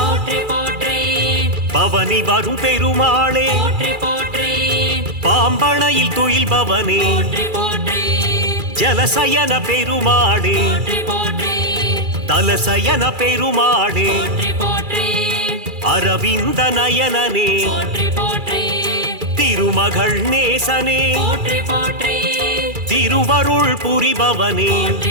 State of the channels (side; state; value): left; late; 2.4 ms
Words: போற்றி போற்றி பவனி வரும் பெருமாளே போற்றி போற்றி பாம்பணையில் துயில்பவனே போற்றி போற்றி ஜலசயன பெருமாளே போற்றி போற்றி தலசயன பெருமாளே போற்றி போற்றி அரவிந்த நயனனே போற்றி போற்றி திருமகள் நேசனே போற்றி போற்றி திருவருள் புரிபவனே